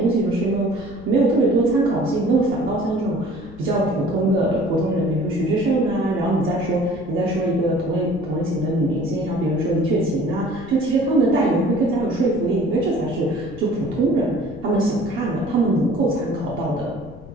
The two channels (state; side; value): noise; left; rumble, 18 dB below the sound